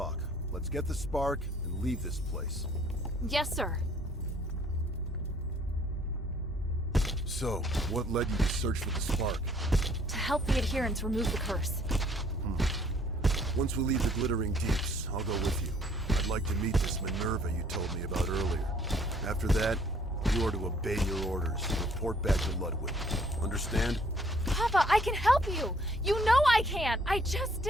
Let's get the spark and leave this place. Yes, sir. So, what led you to search for the spark? To help the adherents remove the curse. Once we leave the Glittering Deeps, I'll go with you. I'd like to meet this Minerva you told me about earlier. After that, you are to obey your orders and report back to Ludwig. Understand? Papa, I can help you! You know I can! I just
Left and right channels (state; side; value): normal; both; correlation 0.61